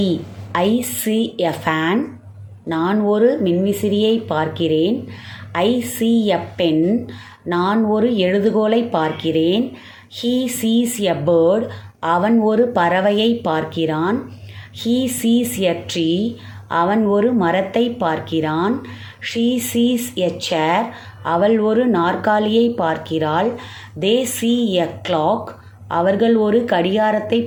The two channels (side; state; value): both; identical; correlation 1.00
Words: I see a fan. நான் ஒரு மின்விசிறியை பார்க்கிறேன். I see a pen. நான் ஒரு எழுதுகோலை பார்க்கிறேன். He sees a bird. அவன் ஒரு பறவையை பார்க்கிறான். He sees a tree. அவன் ஒரு மரத்தை பார்க்கிறான். She sees a chair. அவள் ஒரு நாற்காலியை பார்க்கிறாள். They see a clock. அவர்கள் ஒரு கடிகாரத்தை